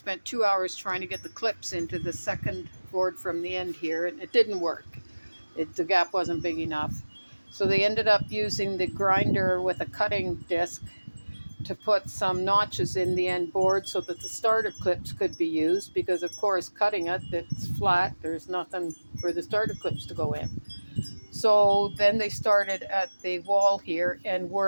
2 hours trying to get the clips into the second board from the end here, and it didn't work. The gap wasn't big enough. So they ended up using the grinder with a cutting disc to put some notches in the end board so that the starter clips could be used, because of course cutting it's flat, there's nothing for the starter clips to go in. So then they started at the wall here and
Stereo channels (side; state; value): both; inverted; correlation -1.00